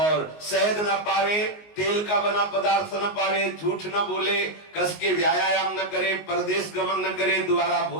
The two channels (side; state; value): right; late; 19 ms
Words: शहद न पावे, तेल का बना पदार्थ न पावे, झूठ न बोले, कस के व्यायाम न करे, परदेश गमन न करे, दोबारा